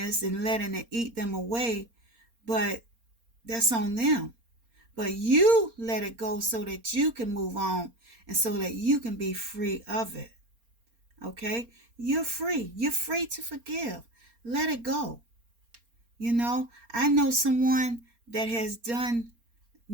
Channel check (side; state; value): left; late; 4.3 ms